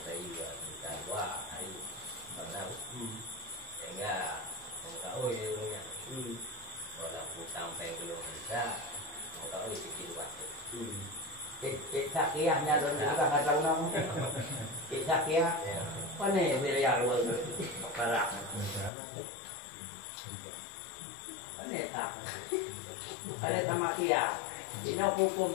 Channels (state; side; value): drops out; right; at 18.9 s